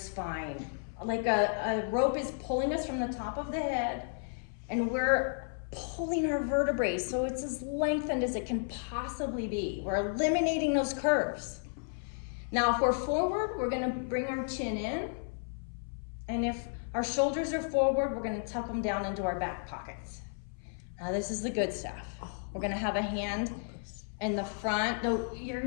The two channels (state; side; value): silent; right; 56 dB below the other